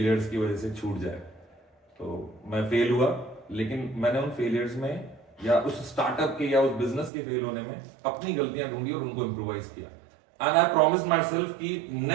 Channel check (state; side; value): drops out; left; at 7.1 s